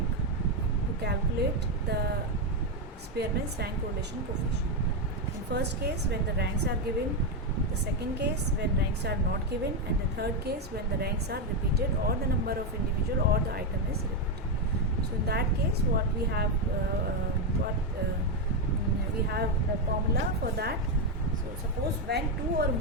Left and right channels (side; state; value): both; normal; correlation 0.05